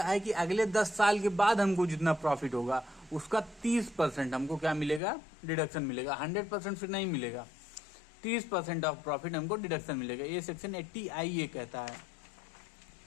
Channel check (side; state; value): right; drops out; at 5.0 s